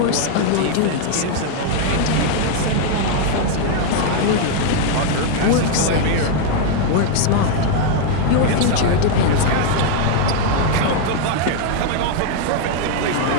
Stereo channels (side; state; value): both; different; correlation 0.00